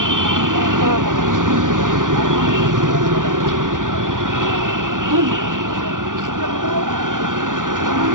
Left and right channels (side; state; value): left; late; 0.88 ms